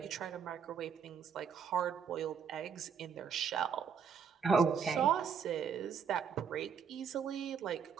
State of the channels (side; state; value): left; quieter; 6.8 dB